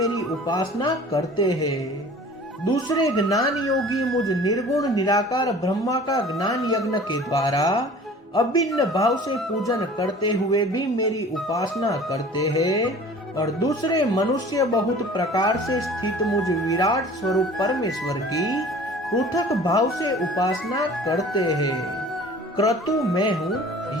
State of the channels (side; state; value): both; normal; correlation 0.45